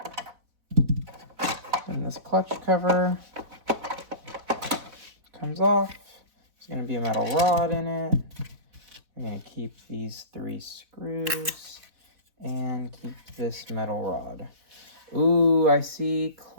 And this clutch cover comes off. There's going to be a metal rod in it. We're going to keep these 3 screws and keep this metal rod. Ooh, I see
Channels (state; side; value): late; left; 4.1 ms